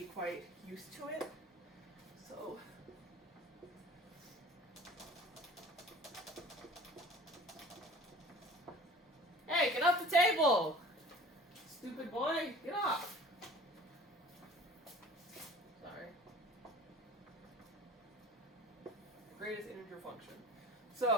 be quite used to it. So hey, get off the table! Stupid boy, get off! Sorry. Greatest integer function.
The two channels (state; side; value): normal; both; correlation 0.44